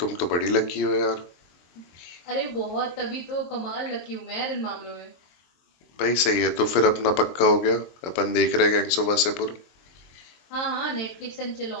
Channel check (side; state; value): right; late; 23 ms